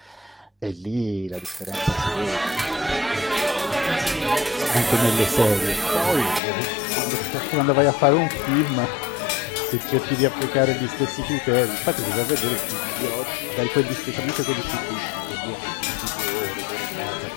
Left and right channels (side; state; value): right; drops out; at 6.4 s